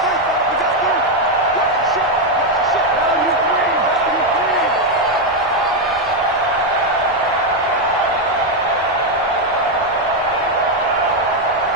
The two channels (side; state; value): both; normal; correlation 0.04